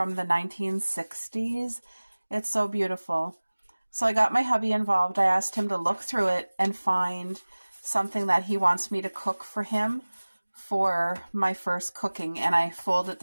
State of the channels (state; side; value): inverted; both; correlation -1.00